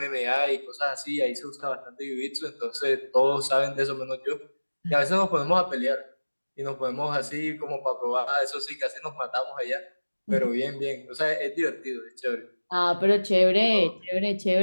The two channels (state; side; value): inverted; both; correlation -1.00